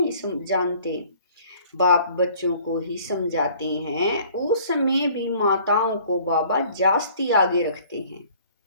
जानते। बाप बच्चों को ही समझाते हैं। उस समय भी माताओं को बाबा जास्ती आगे रखते हैं।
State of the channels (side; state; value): both; inverted; correlation -0.55